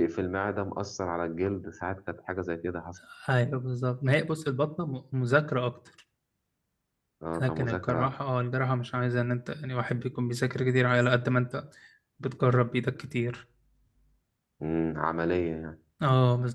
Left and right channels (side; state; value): both; identical; correlation 1.00